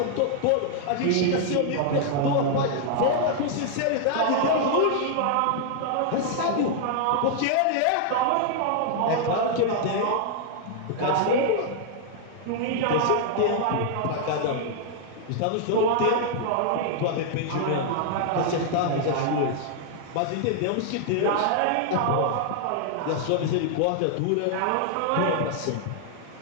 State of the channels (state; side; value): different; both; correlation -0.01